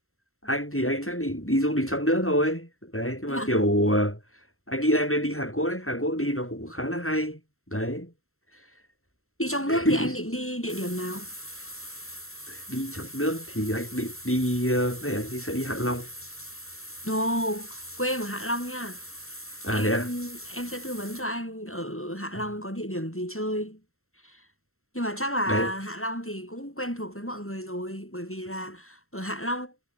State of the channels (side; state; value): right; late; 0.62 ms